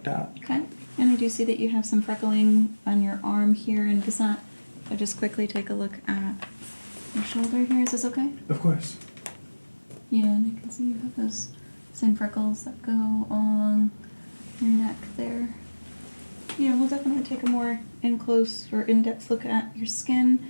at. Okay. And I do see that you have some freckling on your arm here, and does that... I'll just quickly take a look at your shoulder here. Is this okay? Of course. Yeah, and I can see you have those same freckles that go along your neck there. Yeah, we'll definitely take a more in-close or in-depth look at your skin.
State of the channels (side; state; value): both; inverted; correlation -1.00